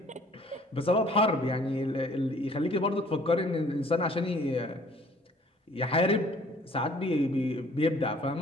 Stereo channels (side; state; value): both; normal; correlation 0.56